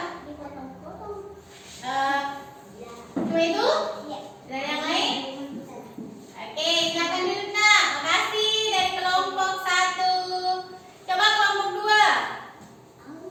Cuma itu? Dari yang lain? Oke, silakan dulu nak. Makasih dari kelompok satu. Coba kelompok dua.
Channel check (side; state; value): both; identical; correlation 1.00